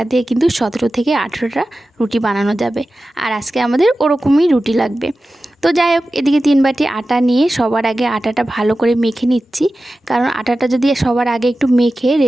দিয়ে কিন্তু 17 থেকে 18টা রুটি বানানো যাবে। আর আজকে আমাদের ওরকমই রুটি লাগবে। তো যাই হোক, এদিকে 3 বাটি আটা নিয়ে সবার আগে আটাটা ভালো করে মেখে নিচ্ছি। কারণ আটাটা যদি সবার আগে একটু মেখে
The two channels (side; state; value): both; normal; correlation 0.94